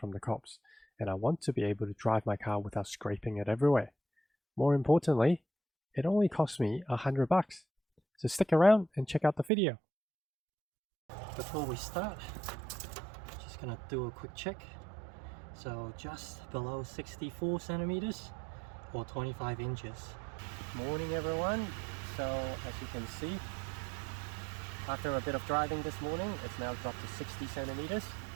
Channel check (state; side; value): drops out; left; at 9.5 s